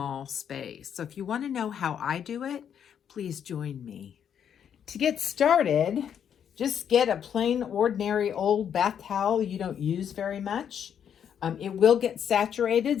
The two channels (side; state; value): right; quieter; 8.6 dB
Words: space. So if you want to know how I do it, please join me. To get started, just get a plain, ordinary old bath towel you don't use very much. It will get